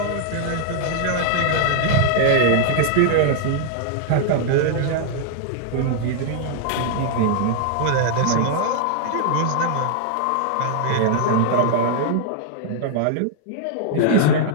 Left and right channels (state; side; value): different; both; correlation -0.01